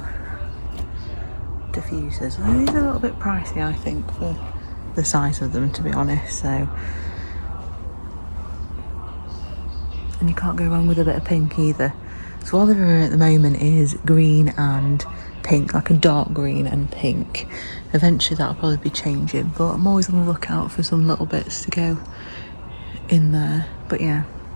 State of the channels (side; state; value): both; inverted; correlation -1.00